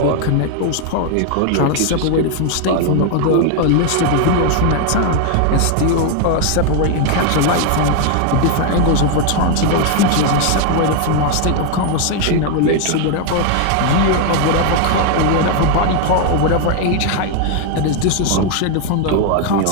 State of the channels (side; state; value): both; different; correlation 0.01